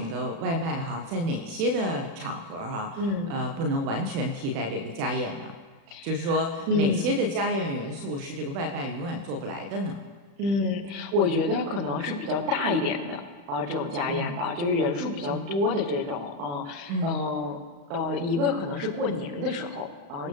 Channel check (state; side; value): late; left; 36 ms